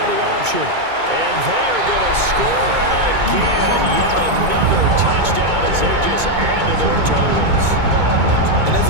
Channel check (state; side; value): late; left; 2.2 ms